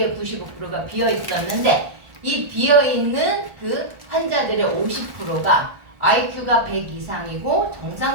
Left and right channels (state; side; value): late; left; 1.5 ms